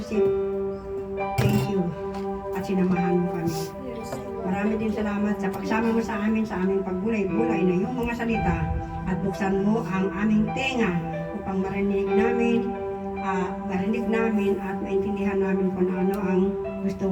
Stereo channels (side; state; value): both; identical; correlation 1.00